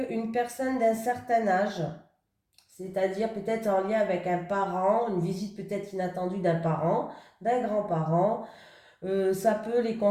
une personne d'un certain âge, c'est-à-dire peut-être en lien avec un parent, une visite peut-être inattendue d'un parent, d'un grand-parent. Ça peut les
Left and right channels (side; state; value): both; identical; correlation 1.00